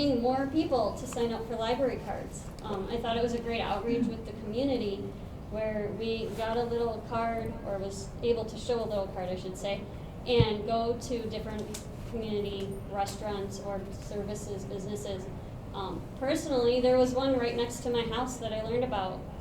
more people to sign up for library cards. I thought it was a great outreach with the community where we got a little card, or was able to show a little card, I should say, and go to different community restaurants or services, businesses. Personally, there was one right next to my house that I learned about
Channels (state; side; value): identical; both; correlation 1.00